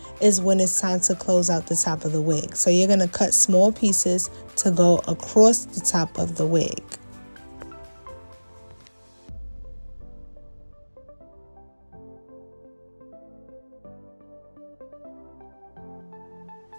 is when it's time to close out the top of the wig. So you're going to cut small pieces to go across the top of the wig.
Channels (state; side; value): inverted; both; correlation -1.00